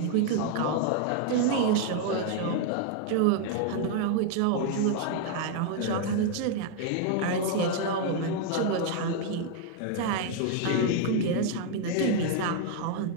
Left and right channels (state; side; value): different; both; correlation 0.00